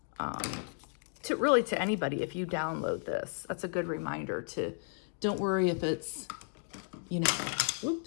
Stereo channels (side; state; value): right; silent; 55 dB below the other